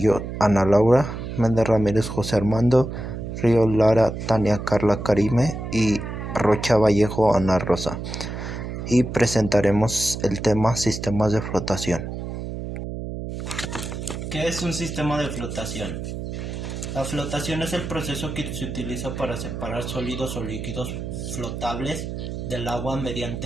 Ana Laura, Méndez Ramírez, José Armando, Río Lara, Tania Carla Karime y Rocha Vallejo, Ana Rosa. Y presentaremos el tema sistemas de flotación. ¿Qué es un sistema de flotación? La flotación es el proceso que se utiliza para separar sólidos o líquidos flotables del agua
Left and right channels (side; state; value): right; noise; hum, 6 dB below the sound